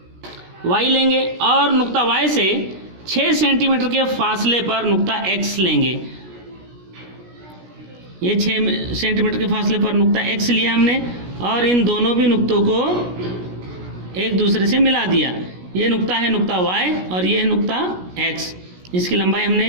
Y लेंगे और नुक्ता Y से 6 सेंटीमीटर के फासले पर नुक्ता X लेंगे। ये 6 सेंटीमीटर के फासले पर नुक्ता X लिया हमने और इन दोनों भी नुक्तों को एक दूसरे से मिला दिया। ये नुक्ता है नुक्ता Y और ये है नुक्ता X। इसकी लंबाई हमने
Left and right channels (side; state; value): left; late; 17 ms